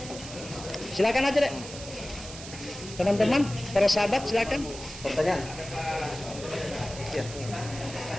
Silakan aja deh. Teman-teman, para sahabat, silakan. Pertanyaan? Ya.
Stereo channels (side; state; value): right; noise; hiss, 12 dB below the sound